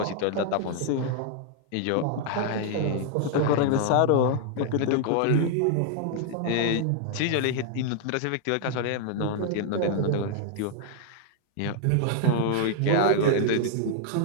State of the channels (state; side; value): different; both; correlation 0.00